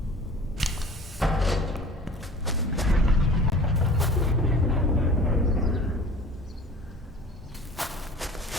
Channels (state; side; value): normal; both; correlation 0.43